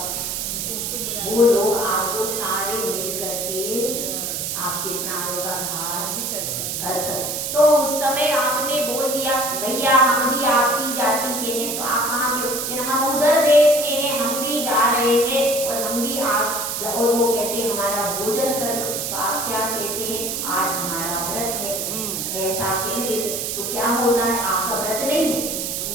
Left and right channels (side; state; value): right; noise; hiss, 3 dB below the sound